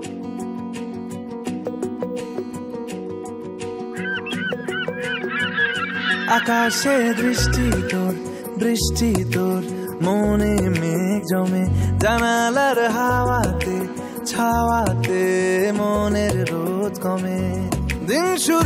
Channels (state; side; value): identical; both; correlation 1.00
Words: আকাশে দৃষ্টি তোর, বৃষ্টি তোর, মনে মেঘ জমে, জানালার হাওয়াতে ছাওয়াতে মনের রোদ কমে। দিন